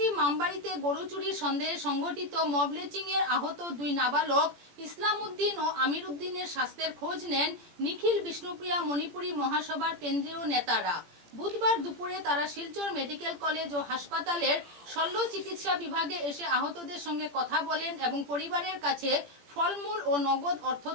মামবাড়িতে গরু চুরির সন্দেহে সংঘটিত মবলেচিং এর আহত 2 নাবালক ইসলাম উদ্দিন ও আমির উদ্দিনের স্বাস্থ্যের খোঁজ নেন নিখিল বিষ্ণুপ্রিয়া মণিপুরী মহাসভার কেন্দ্রীয় নেতারা। বুধবার দুপুরে তারা শিলচর মেডিকেল কলেজ ও হাসপাতালের শল্য চিকিৎসা বিভাগে এসে আহতদের সঙ্গে কথা বলেন এবং পরিবারের কাছে ফলমূল ও নগদ অর্থ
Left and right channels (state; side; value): late; left; 18 ms